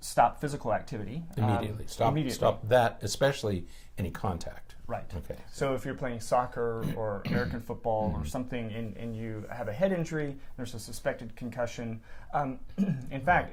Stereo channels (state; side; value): identical; both; correlation 1.00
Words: stop physical activity. Immediately. Stop that, especially any contact. Right. Okay. So if you're playing soccer or American football or something and you have a head injury, there's a suspected concussion. In